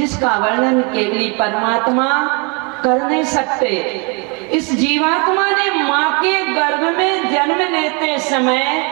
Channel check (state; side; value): quieter; left; 31.5 dB